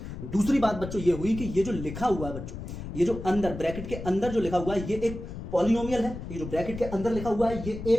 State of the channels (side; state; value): left; noise; rumble, 9 dB below the sound